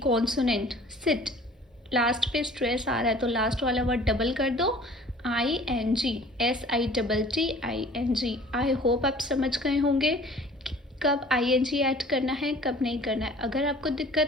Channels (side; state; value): both; normal; correlation 0.49